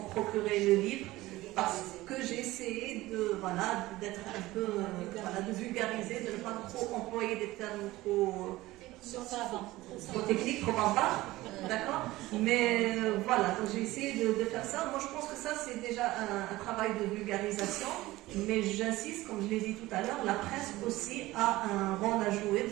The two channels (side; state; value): left; quieter; 18.1 dB